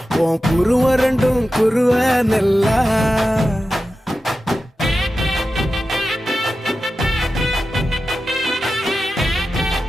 உன் குருவ ரெண்டும் குருவ நெல்லா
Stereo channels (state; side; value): normal; both; correlation 0.92